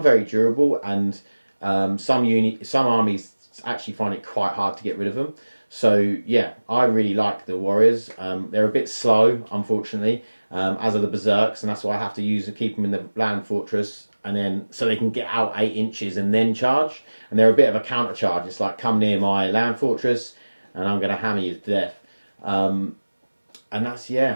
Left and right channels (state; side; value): inverted; both; correlation -1.00